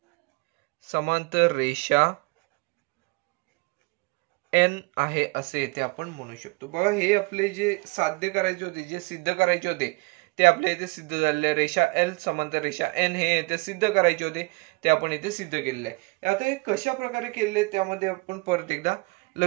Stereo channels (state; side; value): quieter; left; 26.9 dB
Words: समांतर रेषा N आहे असे येथे आपण म्हणू शकतो. बघा हे आपले जे साध्य करायचे होते, जे सिद्ध करायचे होते ते आपल्या इथे सिद्ध झालेले. रेषा L समांतर रेषा N हे येथे सिद्ध करायचे होते ते आपण इथे सिद्ध केलेले आहे. आता हे कशा प्रकारे केले त्यामध्ये आपण परत एकदा